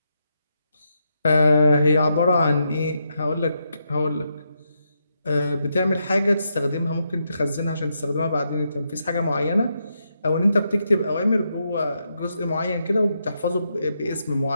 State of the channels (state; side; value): inverted; both; correlation -0.82